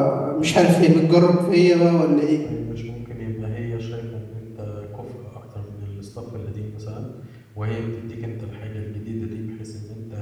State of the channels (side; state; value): both; identical; correlation 1.00